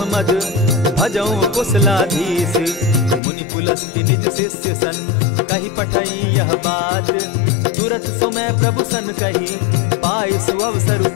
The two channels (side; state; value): right; drops out; at 3.2 s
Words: मद, भजऊं कुशलाधीश। मुनि पुलस्ति निज शिष्य सन, कही पठई यह बात। तुरत सो मैं प्रभु सन कही, पाय सुअवसर